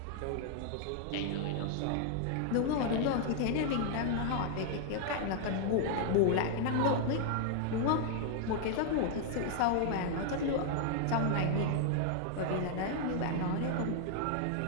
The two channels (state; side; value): different; both; correlation -0.01